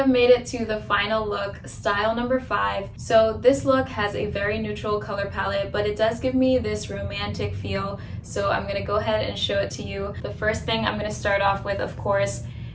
made it to the final look, style number 5. So this look has a very neutral color palette, but it does give me this romantic feel. So I'm gonna go ahead and show it to you. The first thing I'm gonna start off with, of course,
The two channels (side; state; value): both; identical; correlation 1.00